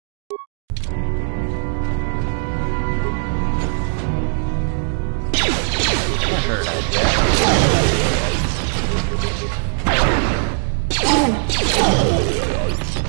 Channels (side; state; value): left; silent; 59 dB below the other